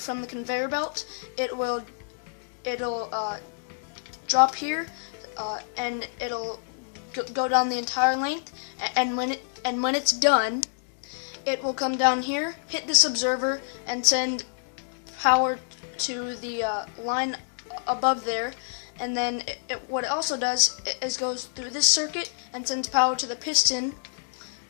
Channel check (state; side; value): silent; right; digital silence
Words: the conveyor belt, it'll drop here, and it'll go down the entire length. And when it's done, it will come down here, hit this observer, and send power to the line above there. And then what it also does is goes through this circuit and sends power to the piston